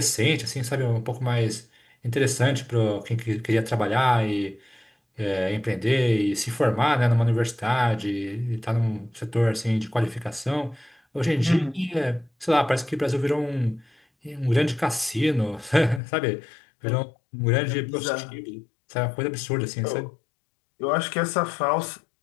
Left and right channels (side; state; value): right; drops out; at 16.0 s